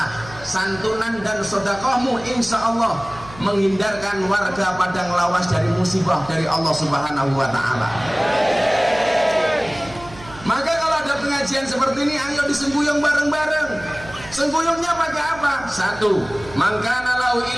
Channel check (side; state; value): right; noise; hum, 18 dB below the sound